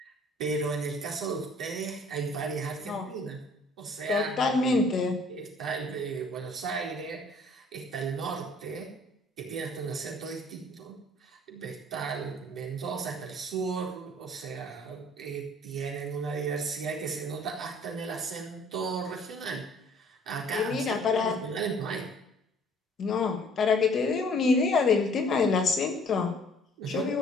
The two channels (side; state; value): both; normal; correlation 0.56